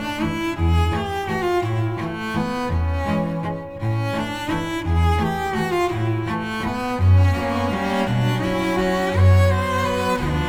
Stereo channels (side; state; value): both; identical; correlation 1.00